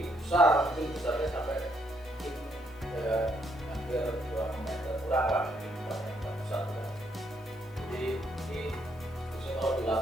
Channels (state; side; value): normal; both; correlation 0.73